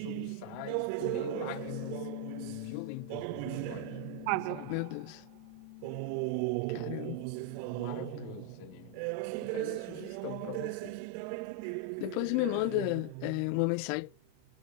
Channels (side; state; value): both; different; correlation 0.00